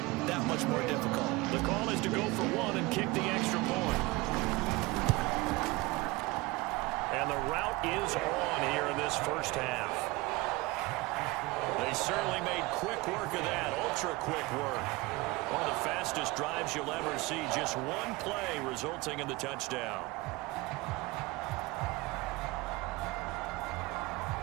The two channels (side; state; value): left; quieter; 22.2 dB